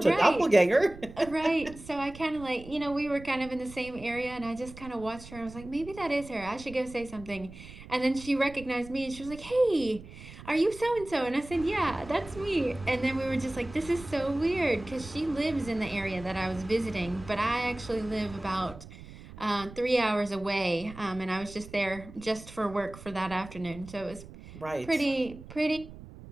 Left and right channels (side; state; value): right; noise; rumble, 16 dB below the sound